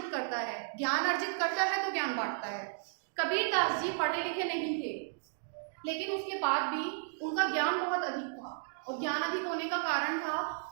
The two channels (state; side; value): silent; left; digital silence